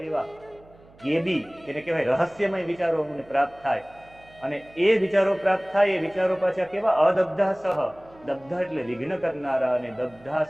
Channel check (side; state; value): right; noise; hum, 26 dB below the sound